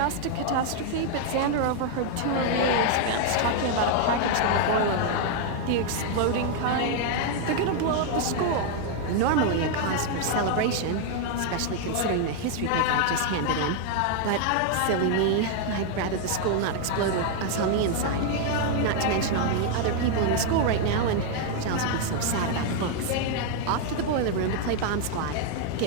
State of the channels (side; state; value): both; different; correlation 0.00